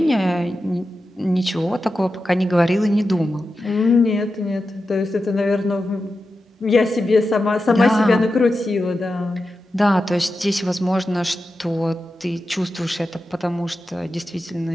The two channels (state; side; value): normal; both; correlation 0.91